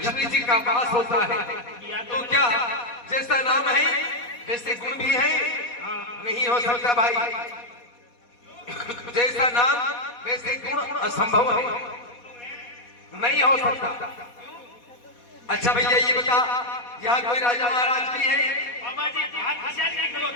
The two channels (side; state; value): right; late; 4.2 ms